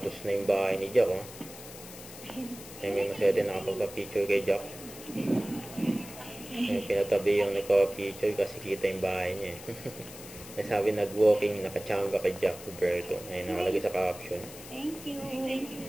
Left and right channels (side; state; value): left; noise; hiss, 15 dB below the sound